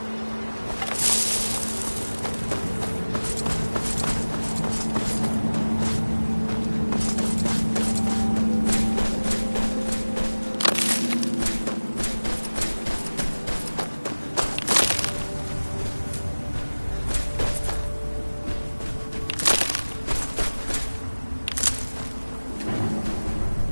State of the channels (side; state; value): both; inverted; correlation -1.00